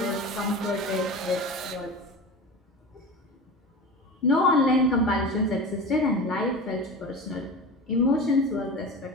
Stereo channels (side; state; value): both; normal; correlation 0.30